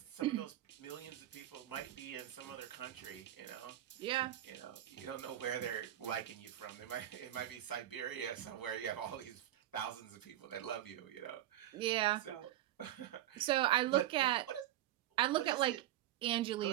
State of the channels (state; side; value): quieter; left; 13.2 dB